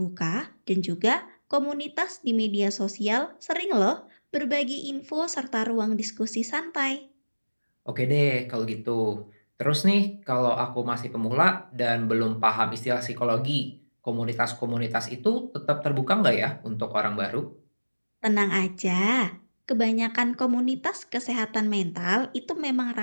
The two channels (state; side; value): inverted; both; correlation -1.00